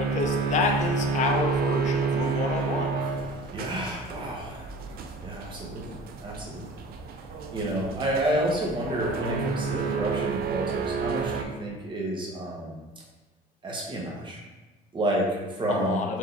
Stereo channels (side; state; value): both; normal; correlation 0.42